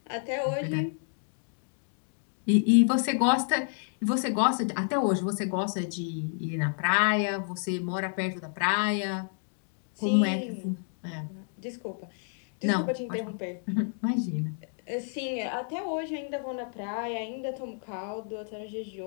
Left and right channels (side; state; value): right; silent; 58 dB below the other